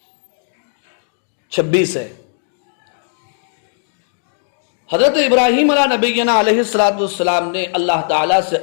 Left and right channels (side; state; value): right; silent; digital silence